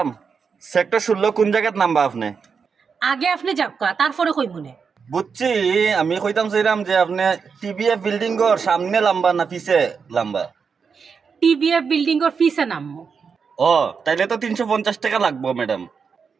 সেক্টর 16 কোন জায়গাত নামবা আপনি? আগে আপনি যাবকা তারপরে কই মনে। বুঝছি, আমি কইতাম চাইলাম যে আপনি টিবিএফ বিল্ডিং এর সামনে লম্বা না পিছে লম্বা? টিভিএফ বিল্ডিং এর ফিসে নামবো। ও তাইলে তো 350 টাকা লাগবো ম্যাডাম।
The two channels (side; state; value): left; quieter; 5.8 dB